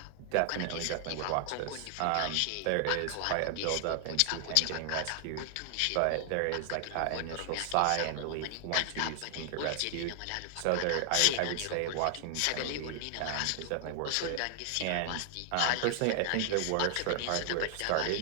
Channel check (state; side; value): different; both; correlation 0.00